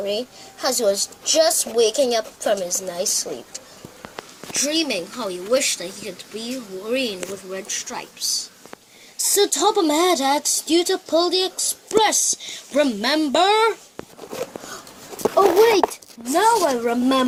as he was just waking up from his nice sleep, dreaming how he wished that he could be green with red stripes. So Topham had asked you to pull the express, remember? Oh wait, now I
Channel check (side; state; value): both; identical; correlation 1.00